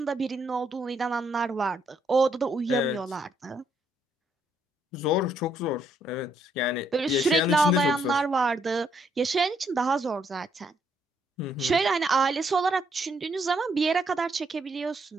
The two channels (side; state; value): both; normal; correlation 0.72